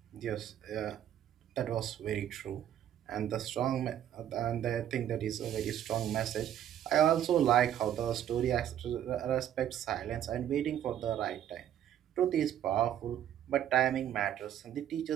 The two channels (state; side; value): quieter; left; 10.8 dB